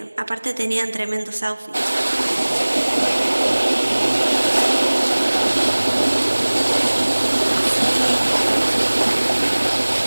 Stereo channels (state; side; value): inverted; both; correlation -1.00